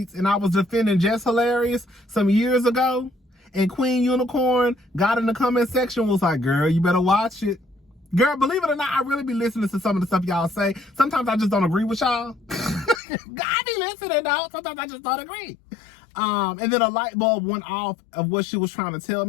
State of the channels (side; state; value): right; drops out; at 13.0 s